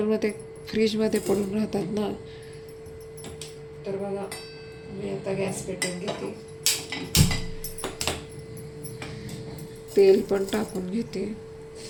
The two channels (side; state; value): both; identical; correlation 1.00